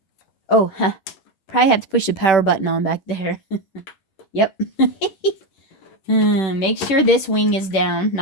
Oh, probably have to push the power button on back there. Yep. Make sure this wing is down,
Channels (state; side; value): late; right; 10 ms